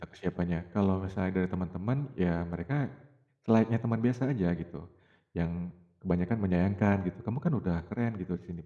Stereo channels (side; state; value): both; identical; correlation 1.00